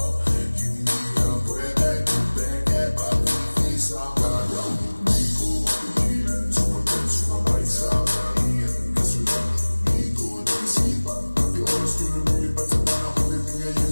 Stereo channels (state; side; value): inverted; both; correlation -1.00